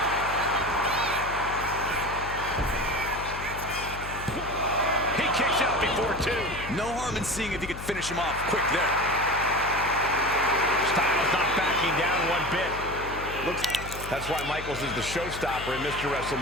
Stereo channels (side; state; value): left; noise; hum, 10 dB below the sound